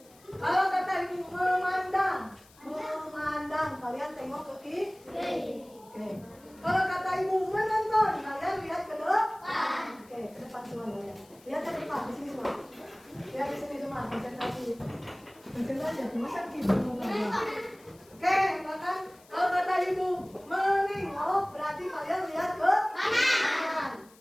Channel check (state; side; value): noise; left; hiss, 27 dB below the sound